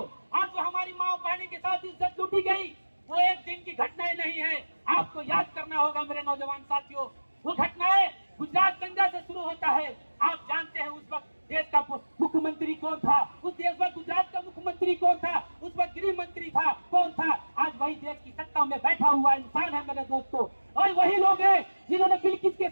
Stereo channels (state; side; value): inverted; both; correlation -1.00